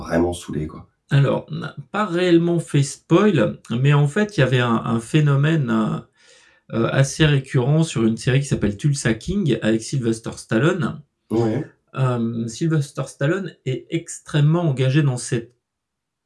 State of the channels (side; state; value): both; identical; correlation 1.00